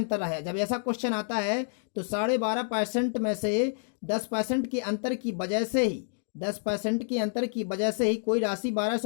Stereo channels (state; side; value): silent; right; digital silence